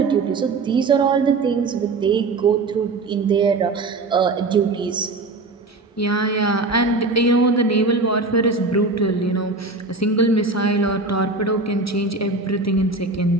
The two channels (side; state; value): left; quieter; 3.5 dB